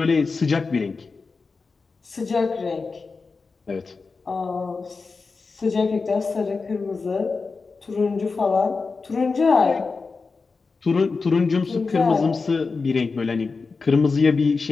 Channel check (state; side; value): quieter; right; 4.4 dB